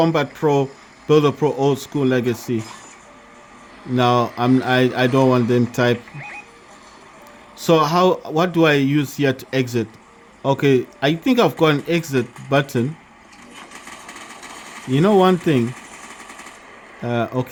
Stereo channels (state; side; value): identical; both; correlation 1.00